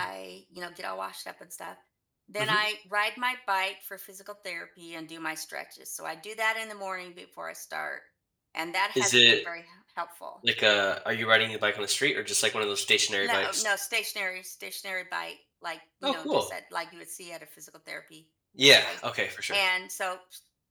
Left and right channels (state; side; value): identical; both; correlation 1.00